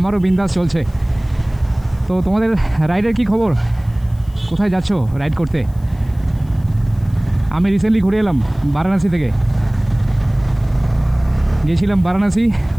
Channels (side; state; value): left; noise; hiss, 29 dB below the sound